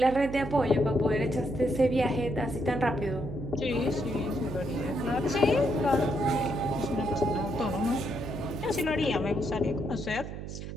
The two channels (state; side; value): noise; right; hum, 8 dB below the sound